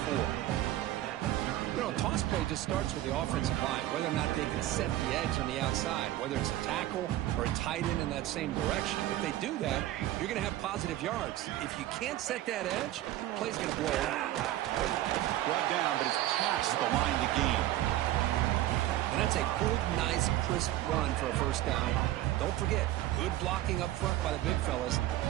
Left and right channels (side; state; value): left; quieter; 14.6 dB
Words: 4. You know, toss play just starts with the offensive line, whether or not they can set the edge on the outside, whether it's a tackle or a tight end in that same direction. If they do that, you're going to have positive yards. If you can't set that edge, the play's going to blow out. Brought down, but it's past the line to gain. And that's a good, nice, crisp run for a first down. Don't forget, good blocking up front by the big fellas.